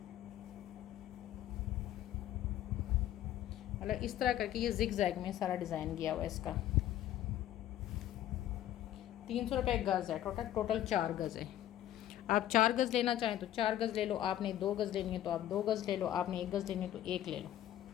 मतलब इस तरह करके ये जिग जैग में सारा डिज़ाइन किया हुआ है इसका। 300 रुपये गज़ है। टोटल 4 गज़ है। आप 4 गज़ लेना चाहें तो 4 गज़ ले लो, आपने 2 गज़ लेनी है तो आप 2 गज़ ले लो, आपने 1 गज़ लेनी है तो 1 ले लो।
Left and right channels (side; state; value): right; quieter; 12.4 dB